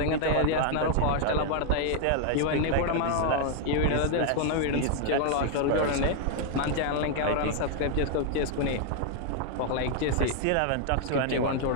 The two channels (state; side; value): different; both; correlation 0.00